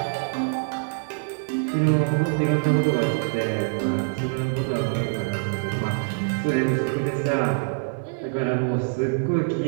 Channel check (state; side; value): silent; left; digital silence